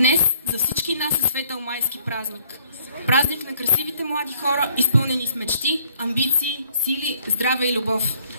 за всички нас е светъл майски празник. Празник на красивите млади хора, изпълнени с мечти, амбиции, сили, здраве и любов.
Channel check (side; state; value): both; inverted; correlation -0.63